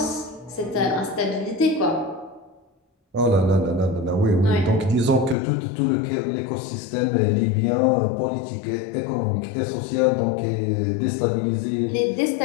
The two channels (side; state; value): right; drops out; at 5.4 s